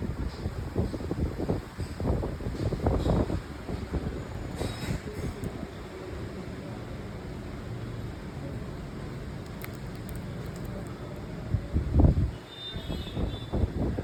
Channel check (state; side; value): identical; both; correlation 1.00